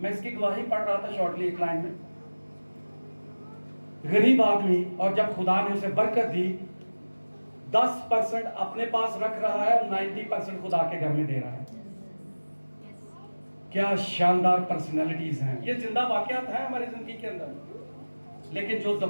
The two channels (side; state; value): both; inverted; correlation -1.00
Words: मैं इसकी गवाही पढ़ रहा था शॉर्टली एक लाइन में। गरीब आदमी, और जब खुदा ने उसे बरकत दी, 10% अपने पास रख रहा है और 90% खुदा के घर में दे रहा है। क्या शानदार पर्सनैलिटीज हैं। ये जिंदा वाकयात है हमारी जिंदगी के अंदर। लेकिन जो